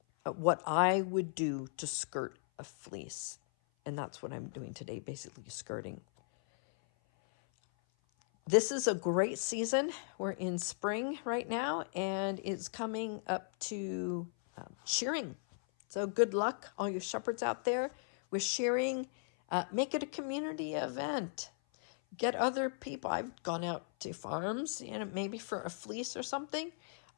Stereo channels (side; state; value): right; silent; 53 dB below the other